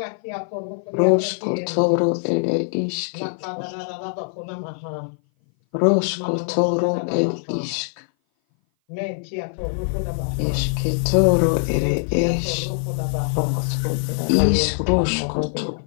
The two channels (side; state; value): right; silent; 58 dB below the other